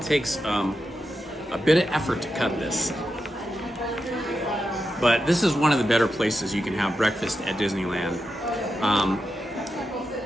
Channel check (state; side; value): normal; both; correlation 0.88